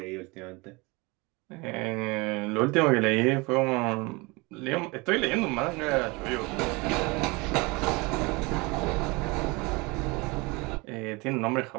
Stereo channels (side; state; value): left; quieter; 25.7 dB